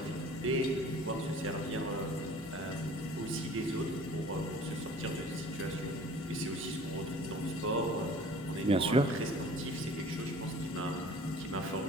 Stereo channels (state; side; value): normal; both; correlation 0.47